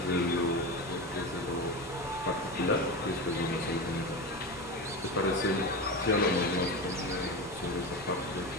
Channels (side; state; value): both; normal; correlation 0.22